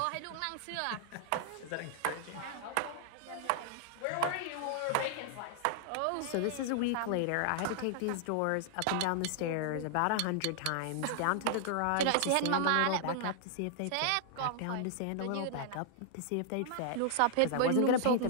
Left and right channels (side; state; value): both; different; correlation -0.01